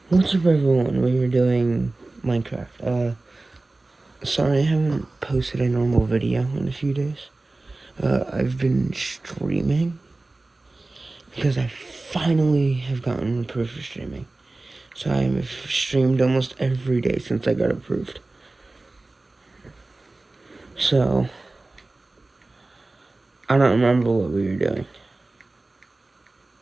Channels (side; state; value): left; quieter; 3.1 dB